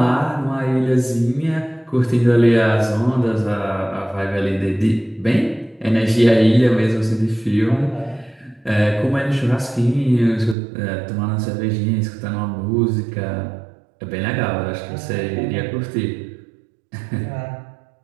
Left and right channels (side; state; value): left; drops out; at 10.6 s